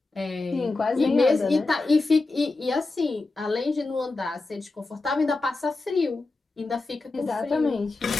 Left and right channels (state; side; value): quieter; right; 3.4 dB